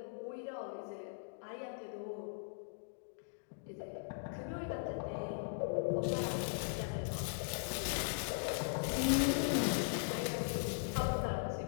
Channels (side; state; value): right; silent; digital silence